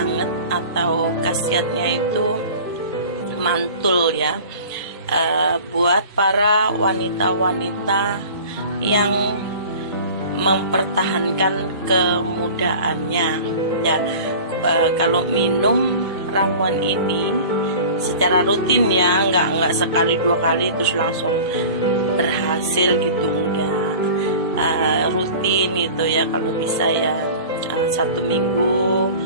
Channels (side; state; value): both; inverted; correlation -0.40